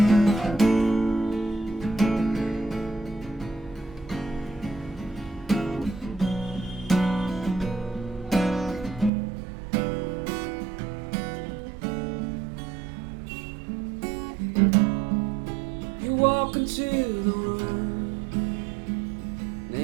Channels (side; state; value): left; drops out; at 9.1 s